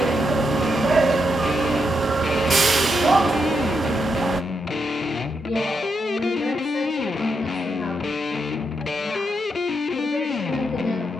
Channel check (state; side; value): normal; both; correlation 0.82